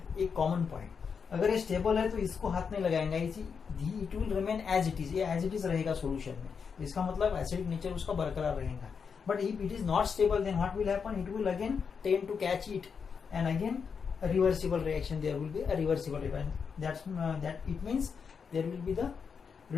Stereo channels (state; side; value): quieter; right; 6.1 dB